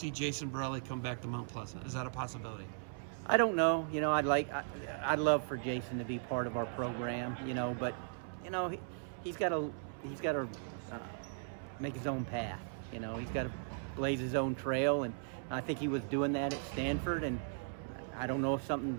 Jason Borrelli come back to Mount Pleasant? Is that a possibility? I don't know. I'd love for Jason to be part of our program. But he's got to make his own path. He's got to blaze his own trail, and I think he was doing that at Stanford. And I don't know if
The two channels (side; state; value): left; silent; 53 dB below the other